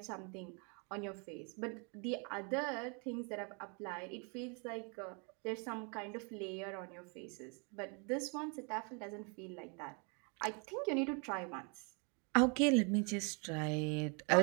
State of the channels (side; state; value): left; quieter; 35.1 dB